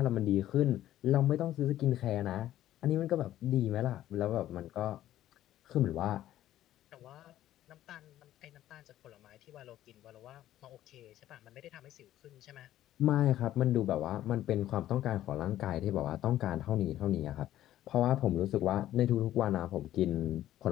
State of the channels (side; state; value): right; quieter; 13.2 dB